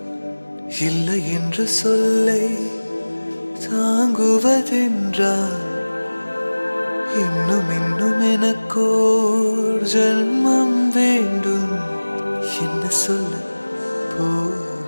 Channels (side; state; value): both; inverted; correlation -1.00